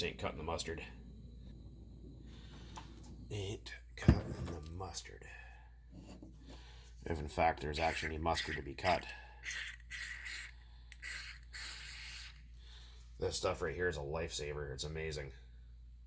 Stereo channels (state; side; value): identical; both; correlation 1.00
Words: ain't cutting the mustard. Ain't cutting the mustard. If in fact there's actually any mustard to be cut. This stuff right here is a lifesaver. It's amazing.